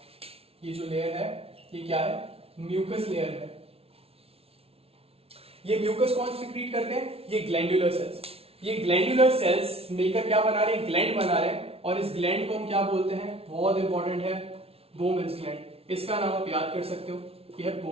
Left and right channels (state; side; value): late; left; 0.29 ms